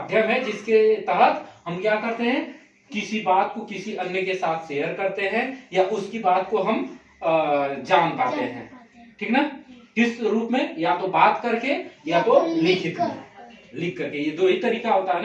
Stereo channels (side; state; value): both; identical; correlation 1.00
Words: है जिसके तहत हम क्या करते हैं? किसी बात को किसी अन्य के साथ शेयर करते हैं, या उसकी बात को हम जान पाते हैं, ठीक ना। किस रूप में? या तो बात करके, या तो लिखित में, लिख करके। ये दो ही तरीका होता है